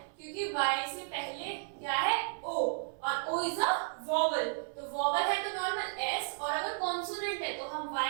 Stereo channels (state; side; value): silent; left; 55 dB below the other